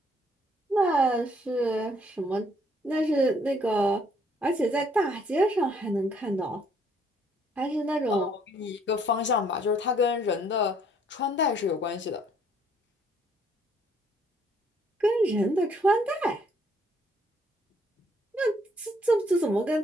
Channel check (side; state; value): both; normal; correlation 0.65